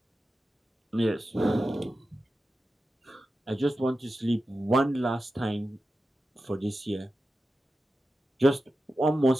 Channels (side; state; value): both; normal; correlation 0.92